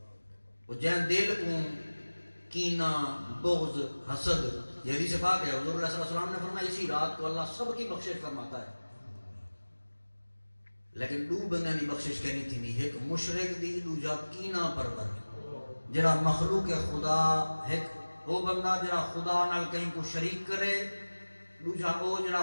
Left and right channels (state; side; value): inverted; both; correlation -1.00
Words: وہ جہاں دل کو کینہ بغض حسد، یہ حدیث پاک ہے حضور علیہ السلام نے فرمایا اسی رات کو اللہ سب کی بخشش فرماتا ہے، لیکن دو بندے دی بخشش کہنی تھی نہیں، ایک مشرک دی، دوجا کینہ پرور جڑا مخلوق خدا، ایک وہ بندہ جڑا خدا نال کہیں کو شریک کرے، دوجا وہ